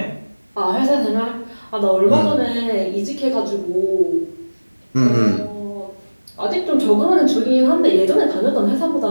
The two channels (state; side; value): inverted; both; correlation -1.00